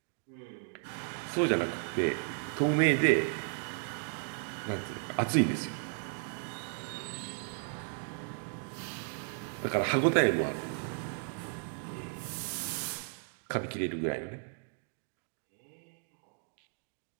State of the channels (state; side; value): silent; left; 55 dB below the other